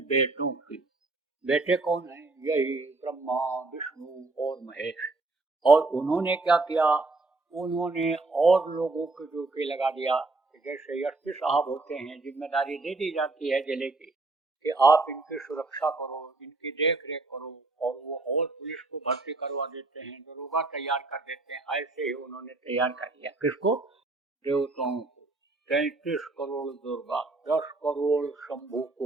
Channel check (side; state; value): left; quieter; 3.3 dB